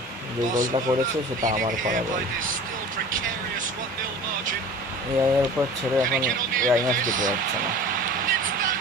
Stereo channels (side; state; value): both; normal; correlation 0.40